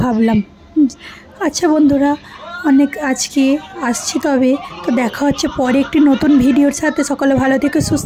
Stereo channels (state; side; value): identical; both; correlation 1.00